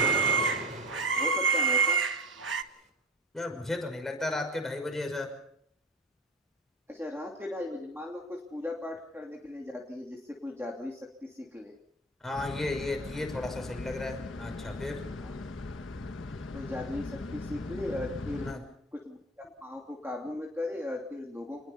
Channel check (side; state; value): both; normal; correlation 0.31